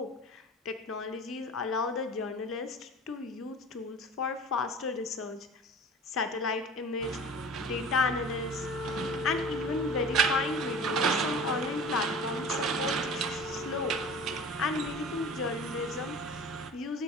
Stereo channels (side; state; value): both; normal; correlation 0.40